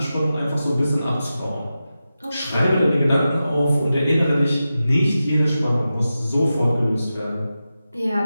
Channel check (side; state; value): both; inverted; correlation -0.92